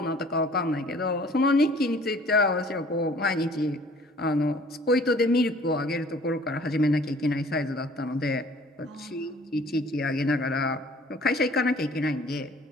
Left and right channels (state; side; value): normal; both; correlation 0.53